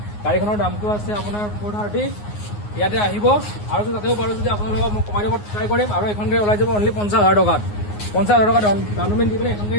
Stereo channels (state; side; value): late; right; 9.6 ms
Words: গাড়ীখনৰ দামটো আছে আপোনাৰ 430। ইয়াতে আহিব আৰু তাতেও পাৰোঁ যদি আপোনালোকক মই কমাই দিব ট্ৰাই কৰিম। আৰু এখন গাড়ী ওলাই যাব অনলি 50,000 টকাত। 50,000 টকা ডাউন পে'মেণ্ট দি পিনে এখন